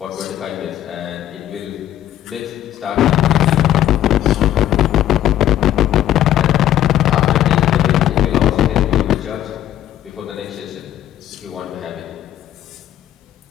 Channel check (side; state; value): right; quieter; 12.1 dB